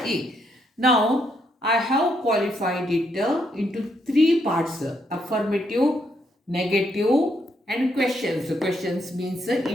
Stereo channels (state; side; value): normal; both; correlation 0.76